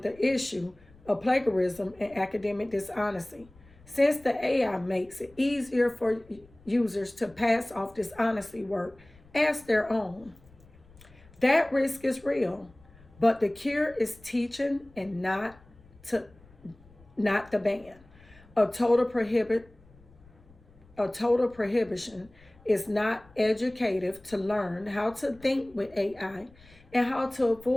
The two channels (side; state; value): left; noise; rumble, 26 dB below the sound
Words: the issue of plagiarism and academic dishonesty, since the AI makes it easier for users to pass off dishonesty work as their own. That risk is real, but the cure is teaching and not the ban. A total prohibition is not educative to learn how to think with AI and how to